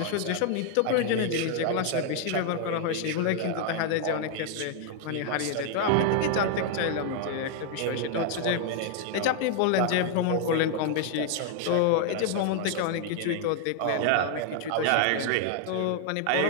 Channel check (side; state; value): both; different; correlation 0.00